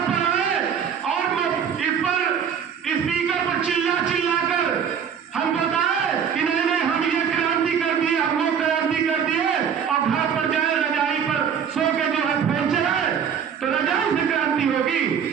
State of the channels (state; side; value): quieter; left; 7.7 dB